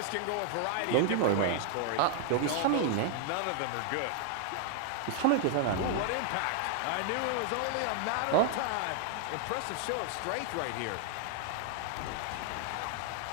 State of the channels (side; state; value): both; different; correlation 0.00